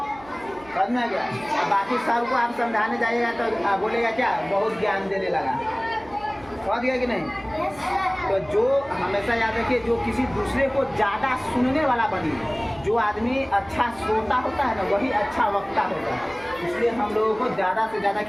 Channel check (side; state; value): right; noise; hum, 22 dB below the sound